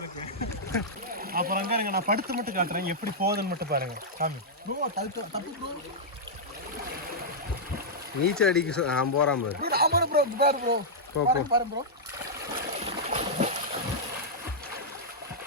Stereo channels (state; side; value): normal; both; correlation -0.09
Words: இருக்கு. அப்புறம் அங்கே நான் படுத்து மட்டும் காட்டுறேன், எப்படி போகுதுன்னு மட்டும் பாருங்க. சாமி நீச்சல் அடிக்க நான் போகிறான் ப்ரோ.